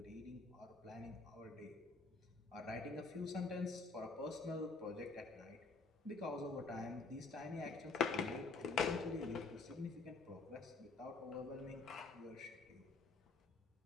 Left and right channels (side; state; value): right; quieter; 3.9 dB